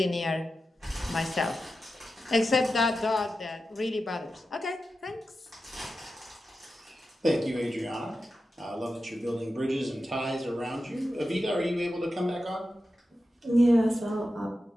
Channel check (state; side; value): normal; both; correlation 0.91